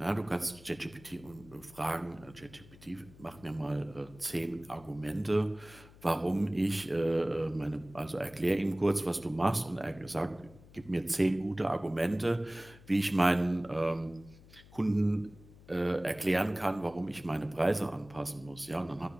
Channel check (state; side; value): noise; left; hum, 22 dB below the sound